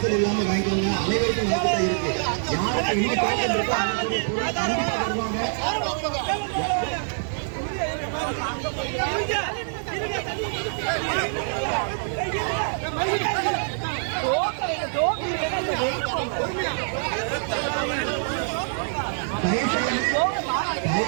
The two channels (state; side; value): silent; left; 57 dB below the other